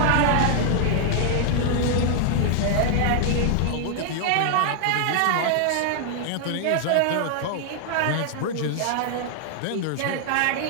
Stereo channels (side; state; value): both; different; correlation 0.00